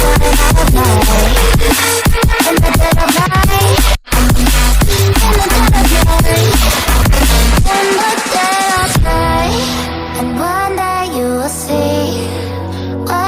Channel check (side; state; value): both; identical; correlation 1.00